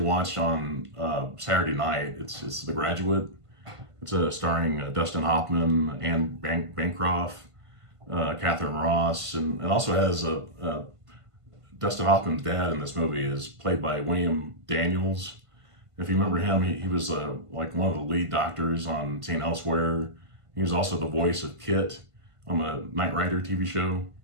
watched on Saturday night. It's The Graduate. It's starring Dustin Hoffman, Anne Bancroft, Catherine Ross, and it also has Dustin Hoffman's dad in this movie is played by William Daniels. If you remember him, he was like one of the lead doctors on St. Elsewhere. He was also the voice of Kit on the Knight Rider TV show.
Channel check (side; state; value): left; late; 1.5 ms